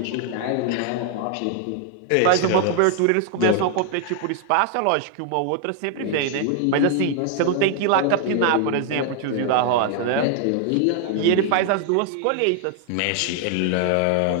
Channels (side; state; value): both; different; correlation 0.00